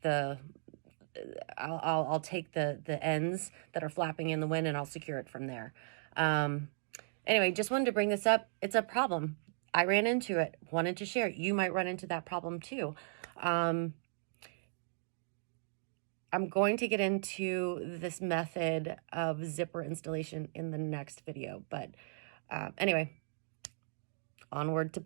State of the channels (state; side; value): silent; left; digital silence